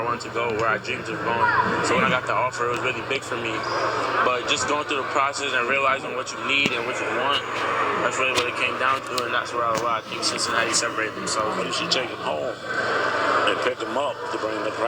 wanted to go, where I dreamed of going. So when I got the offer, it was really big for me. But just going through the process and realizing what you need and what you want, that's really what it came down to, and that's where I think Cincinnati separated themselves. You should take him home and pick him up to bring him to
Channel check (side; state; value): both; identical; correlation 1.00